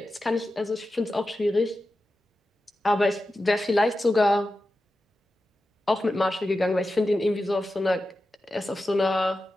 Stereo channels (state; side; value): normal; both; correlation 0.92